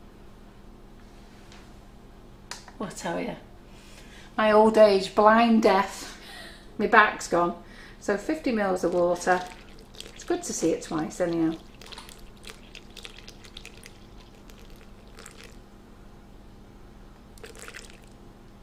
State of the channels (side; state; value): both; identical; correlation 1.00